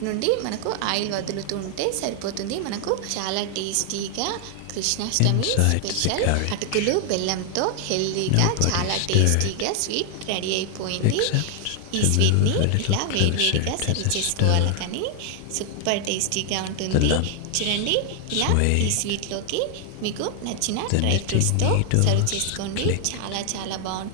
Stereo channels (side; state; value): both; different; correlation 0.00